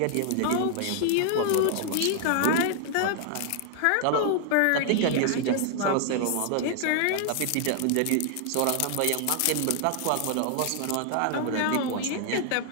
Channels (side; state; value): both; different; correlation 0.00